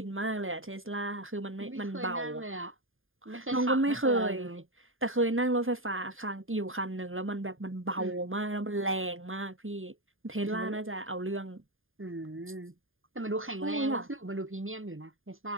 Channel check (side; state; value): left; late; 0.59 ms